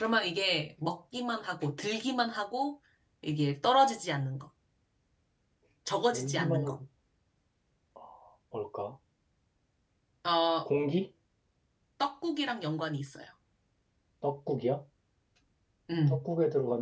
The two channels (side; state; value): both; identical; correlation 1.00